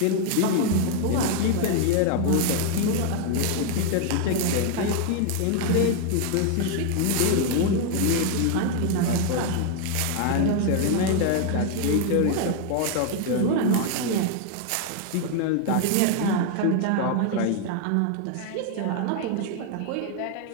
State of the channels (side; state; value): both; different; correlation 0.00